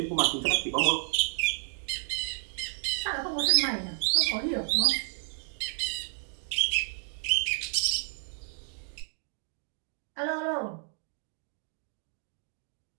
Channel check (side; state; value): left; silent; 57 dB below the other